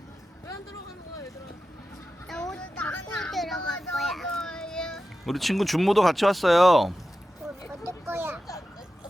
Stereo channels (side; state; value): both; normal; correlation 0.92